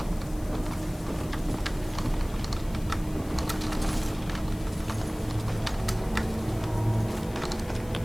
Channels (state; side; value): noise; left; hiss, 20 dB below the sound